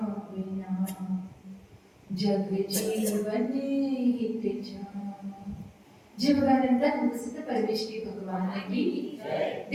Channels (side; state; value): both; identical; correlation 1.00